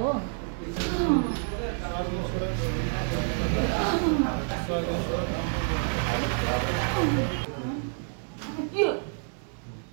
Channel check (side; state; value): left; silent; 59 dB below the other